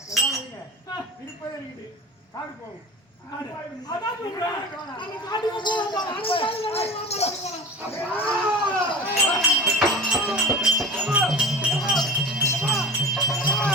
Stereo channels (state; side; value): normal; both; correlation 0.34